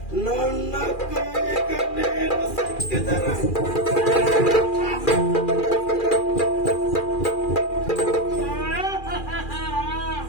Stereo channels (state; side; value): late; right; 2.4 ms